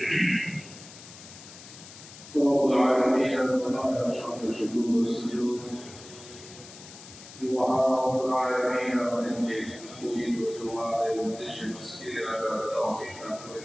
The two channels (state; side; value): noise; left; hiss, 17 dB below the sound